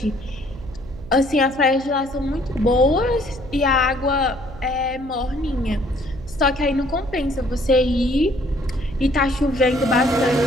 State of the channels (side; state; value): right; noise; hum, 16 dB below the sound